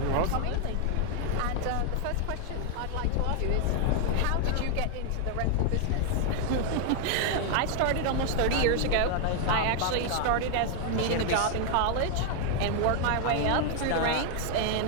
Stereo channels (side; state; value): both; different; correlation 0.00